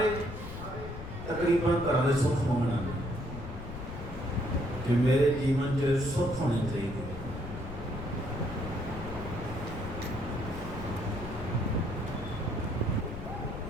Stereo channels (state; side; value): noise; left; rumble, 9 dB below the sound